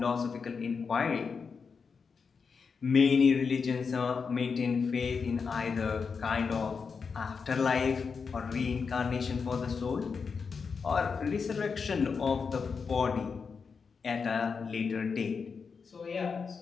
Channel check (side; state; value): right; quieter; 5.5 dB